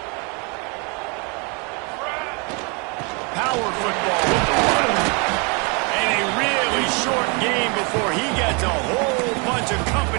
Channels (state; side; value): quieter; left; 33.1 dB